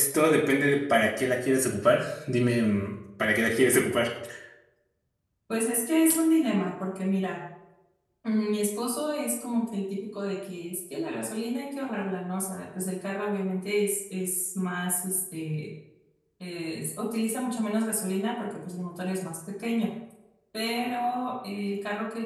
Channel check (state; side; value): identical; both; correlation 1.00